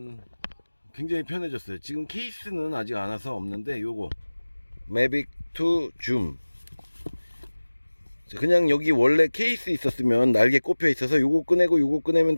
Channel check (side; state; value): both; inverted; correlation -1.00